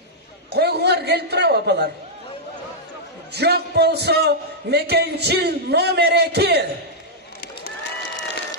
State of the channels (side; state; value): both; normal; correlation -0.07